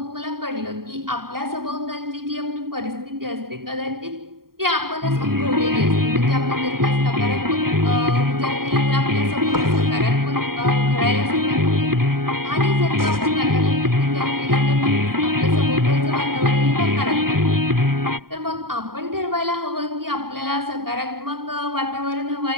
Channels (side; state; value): left; late; 0.93 ms